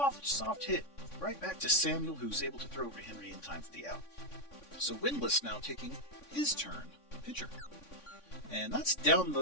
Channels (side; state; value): right; late; 3.5 ms